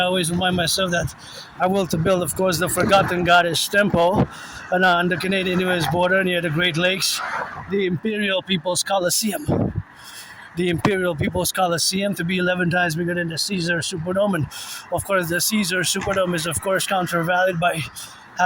always remind myself that I will to build, of course, the Forgotten Goddess Temple on the Canadian-US border near the Great Lakes, the Imperial People's Coliseum. The Imperial People's Coliseum to be 11 times bigger than the Caesar Superdome. And of course, the Caesar Superdome is, of course, countervalued by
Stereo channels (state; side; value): identical; both; correlation 1.00